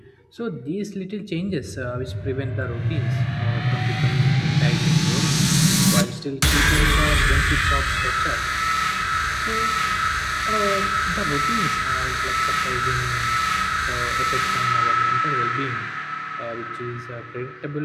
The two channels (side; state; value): both; identical; correlation 1.00